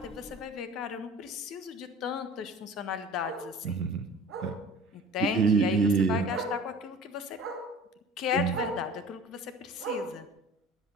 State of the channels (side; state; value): both; normal; correlation 0.42